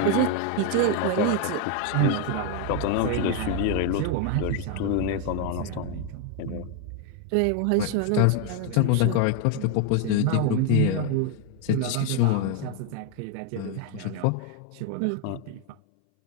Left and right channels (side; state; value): both; different; correlation 0.01